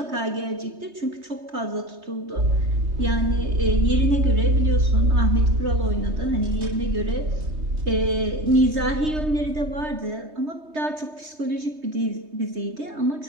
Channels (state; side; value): late; left; 3.2 ms